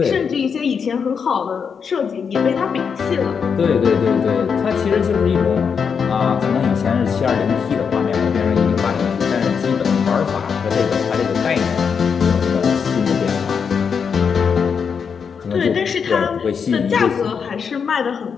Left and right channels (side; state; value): right; quieter; 6.4 dB